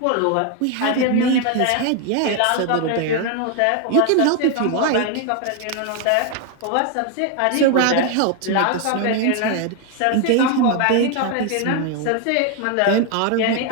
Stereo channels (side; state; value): both; different; correlation 0.01